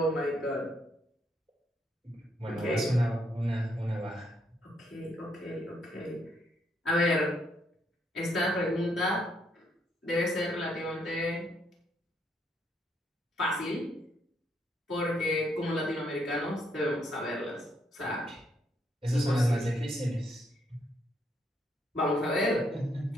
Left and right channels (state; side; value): normal; both; correlation 0.73